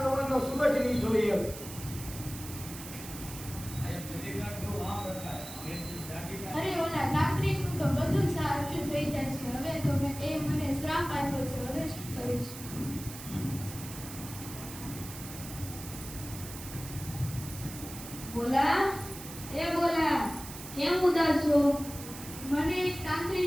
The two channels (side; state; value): right; noise; hiss, 12 dB below the sound